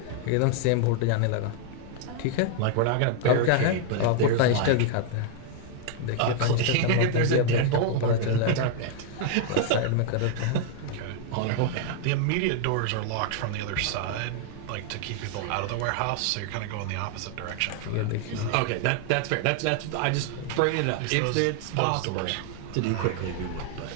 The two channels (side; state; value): both; different; correlation 0.00